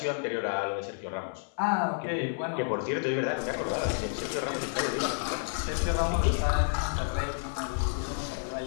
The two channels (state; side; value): silent; right; 58 dB below the other